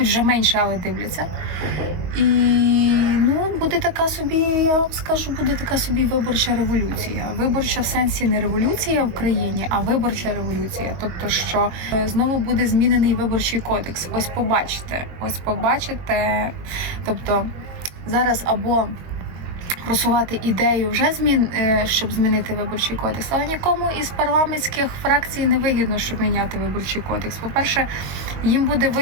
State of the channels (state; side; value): late; left; 22 ms